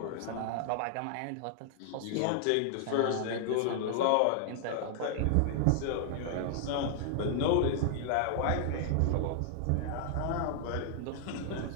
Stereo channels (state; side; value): different; both; correlation -0.01